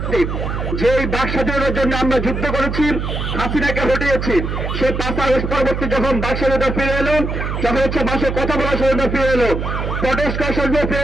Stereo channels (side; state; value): right; noise; hum, 3 dB below the sound